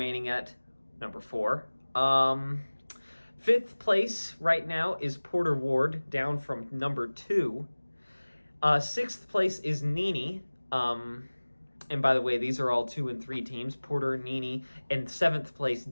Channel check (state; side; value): inverted; both; correlation -1.00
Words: at number 4. 5th place right now is Porter Ward, down from number 2. 6th place is Nini. And by the way, these are all 2 and 3 teams. Porter, Nini, and 7th place